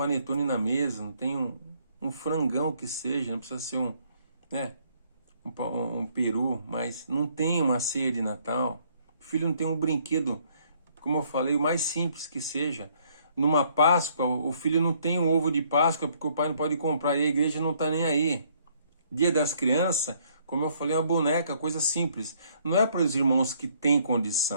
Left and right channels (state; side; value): inverted; both; correlation -0.66